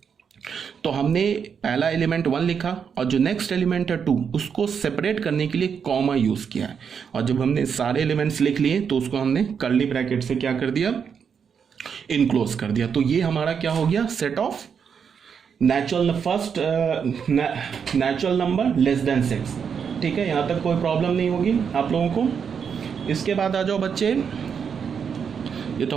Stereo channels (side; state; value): left; quieter; 6.9 dB